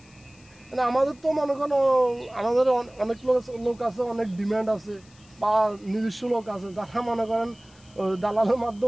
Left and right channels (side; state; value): left; noise; hiss, 28 dB below the sound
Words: মানে আমাদের তো মনে করেন আমাদের অনেক লোক আছে, অনেক ডিমান্ড আছে, বা নিজস্ব লোক আছে যারা মনে করেন দালালের